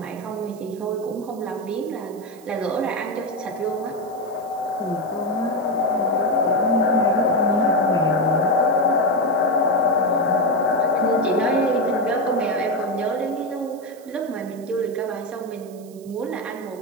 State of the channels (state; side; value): noise; right; hiss, 25 dB below the sound